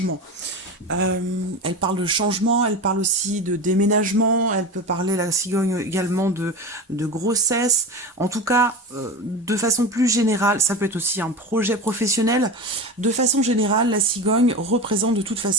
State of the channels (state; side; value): normal; both; correlation 0.26